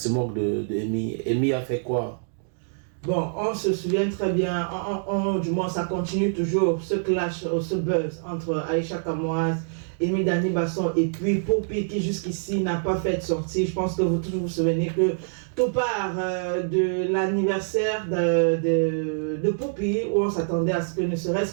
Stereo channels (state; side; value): silent; left; digital silence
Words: moque de Amy? Amy a fait quoi? Bon, on se souvient très bien, du moins ça continue toujours, ce clash, ce buzz entre Aïcha Kamoise, Amy Dani Basson et puis Poppy qui jusqu'ici n'a pas fait de sortie. Je pense que vous tous vous souvenez que tout part de l'anniversaire de Poppy où on s'attendait à ce que ne